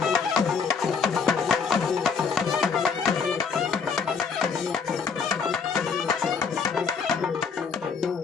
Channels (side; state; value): right; quieter; 5.7 dB